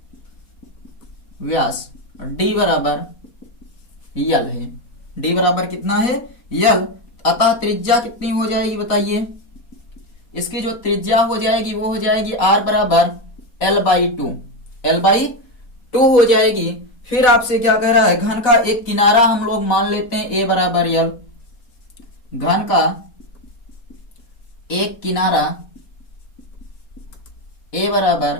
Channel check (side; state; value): right; late; 4.3 ms